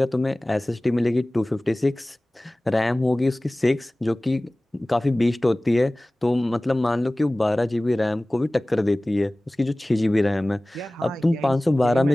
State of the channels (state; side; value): normal; both; correlation 0.98